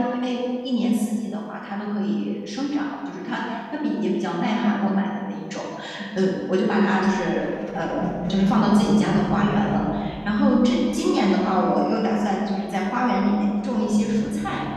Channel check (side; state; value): both; identical; correlation 1.00